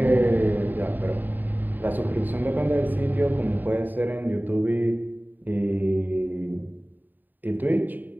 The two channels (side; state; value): left; late; 0.089 ms